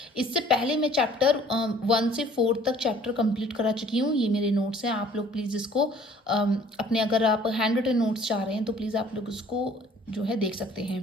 इससे पहले मैं चैप्टर 1 से 4 तक चैप्टर कंप्लीट करा चुकी हूँ। ये मेरे नोट्स हैं, आप लोग प्लीज़ इसको अपने, अगर आप हैंड रिटन नोट्स चाह रहे हैं तो प्लीज़ आप लोग इसको जो है देख सकते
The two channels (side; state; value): both; normal; correlation 0.55